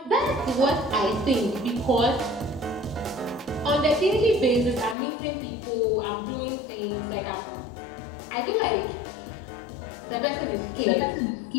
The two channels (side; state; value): right; drops out; at 5.0 s